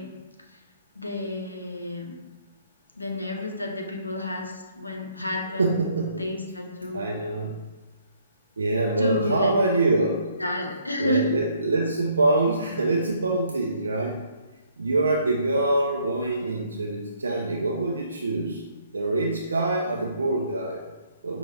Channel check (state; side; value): inverted; both; correlation -0.66